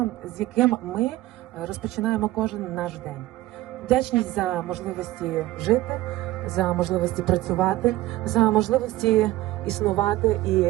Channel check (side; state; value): left; quieter; 16.7 dB